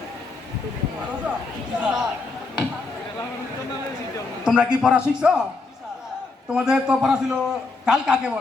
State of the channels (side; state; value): right; quieter; 3.8 dB